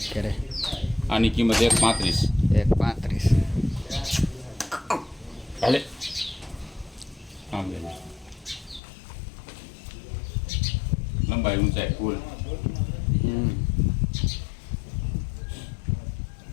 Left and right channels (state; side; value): drops out; right; at 8.8 s